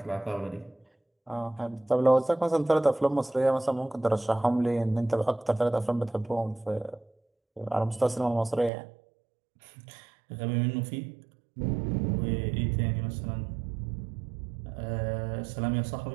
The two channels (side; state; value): left; drops out; at 8.7 s